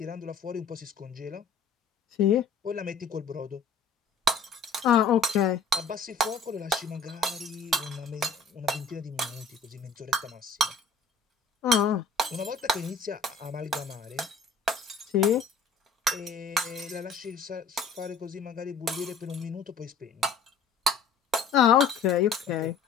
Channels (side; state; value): right; quieter; 4.6 dB